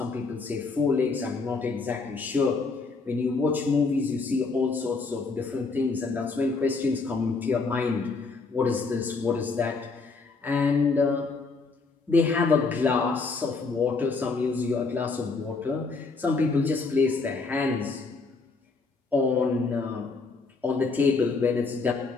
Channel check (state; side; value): quieter; right; 4.2 dB